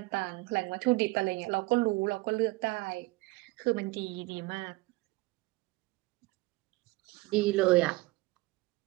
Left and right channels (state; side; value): quieter; left; 22.4 dB